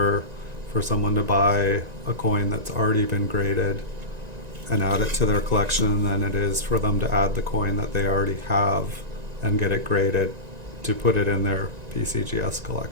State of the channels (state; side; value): late; left; 1.9 ms